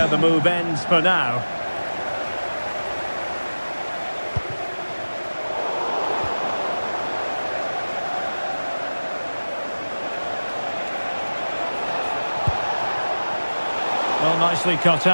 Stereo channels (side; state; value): both; inverted; correlation -1.00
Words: the move ends for now. Well, nicely cut